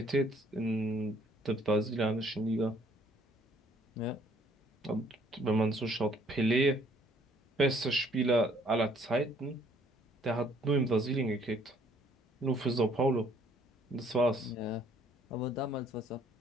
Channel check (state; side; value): normal; both; correlation 0.62